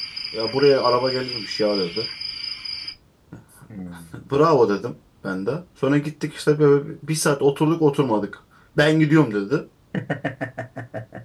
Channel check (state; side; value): identical; both; correlation 1.00